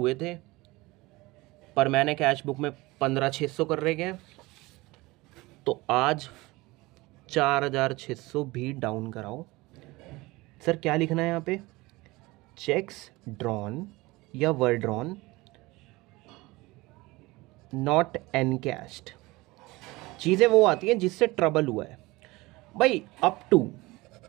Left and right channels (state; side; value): quieter; left; 21.5 dB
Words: थे, पर मैंने कैश बुक में 15,600 कर रखे हैं, तो आज 4,600 भी डाउन कराओ। सर क्या लिखना है यहाँ पे? चेक्स ड्रॉन या वर ड्रॉन नॉट एनकैश्ड। चीजें वो आती हैं जिससे ट्रबल हुआ है भाई। अप टू